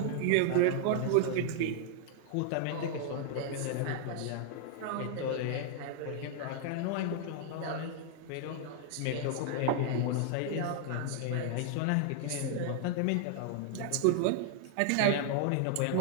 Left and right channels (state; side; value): different; both; correlation -0.01